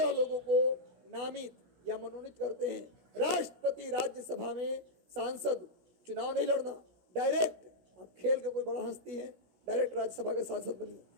लोगों को नामित या मनोनीत करते हैं। राष्ट्रपति राज्यसभा में सांसद, चुनाव नहीं लड़ना, डायरेक्ट। आप खेल के कोई बड़ा हस्ती है, डायरेक्ट राज्यसभा के सांसद बनिए।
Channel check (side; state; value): left; late; 16 ms